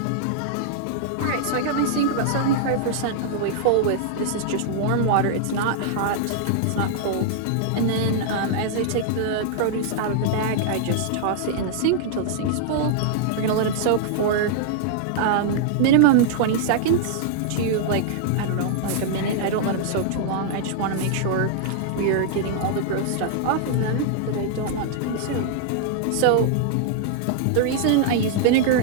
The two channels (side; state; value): both; different; correlation -0.01